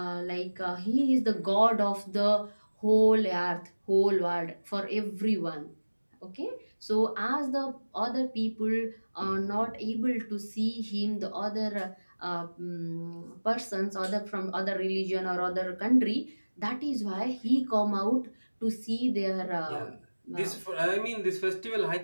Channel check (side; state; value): both; inverted; correlation -1.00